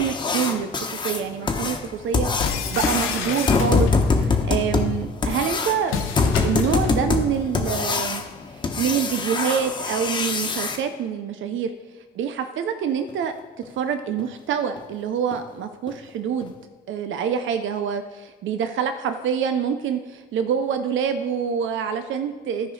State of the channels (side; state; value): both; normal; correlation 0.35